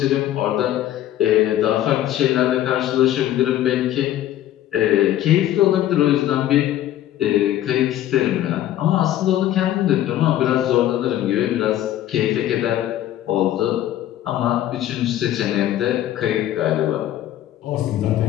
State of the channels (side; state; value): right; quieter; 12.7 dB